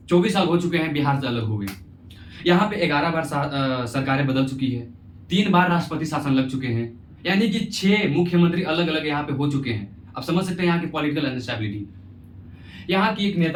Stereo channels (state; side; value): identical; both; correlation 1.00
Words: 24 साल हो चुके हैं बिहार से अलग हो गए। यहाँ पे 11 बार सरकारें बदल चुकी है, 3 बार राष्ट्रपति शासन लग चुके हैं, यानी कि 6 मुख्यमंत्री अलग अलग यहाँ पे हो चुके हैं। आप समझ सकते हैं यहाँ की पॉलिटिकल अनस्टेबिलिटी। यहाँ की एक